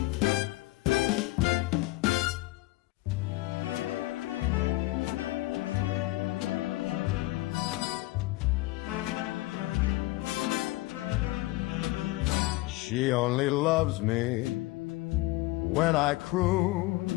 She only loves me when I croon,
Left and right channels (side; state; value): right; quieter; 19.6 dB